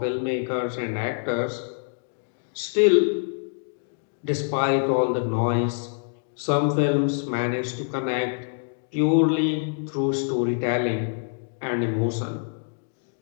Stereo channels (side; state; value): right; silent; digital silence